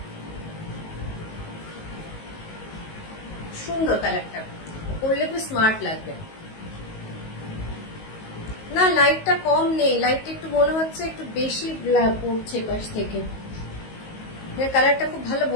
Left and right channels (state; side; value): late; right; 19 ms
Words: সুন্দর কালারটা, পরলে খুব স্মার্ট লাগবে। না লাইটটা কম নেই, লাইটটা একটু মনে হচ্ছে একটু বেশি পড়ছে পাশ থেকে, কালারটা খুব ভালো